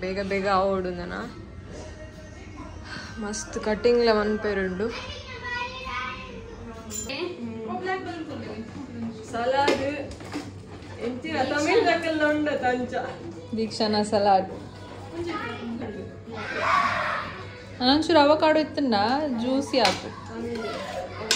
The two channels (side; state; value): both; identical; correlation 1.00